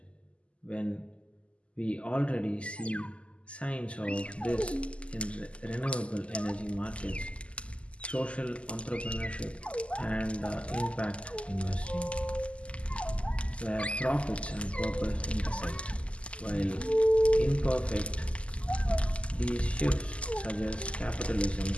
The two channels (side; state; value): right; late; 0.056 ms